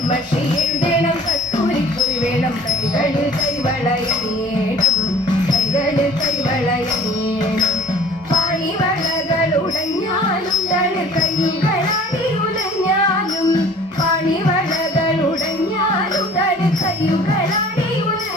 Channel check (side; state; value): both; normal; correlation 0.48